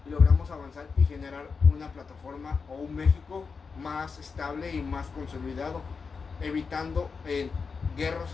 y logramos avanzar y generar una plataforma o un México más estable y más consolidado, evitando guerras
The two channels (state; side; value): quieter; right; 5.1 dB